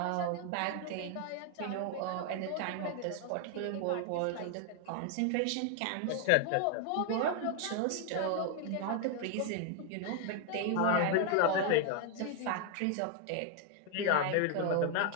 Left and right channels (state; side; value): different; both; correlation 0.00